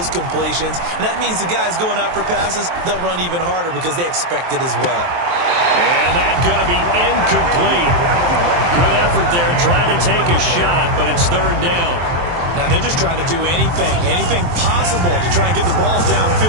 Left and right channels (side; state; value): left; late; 23 ms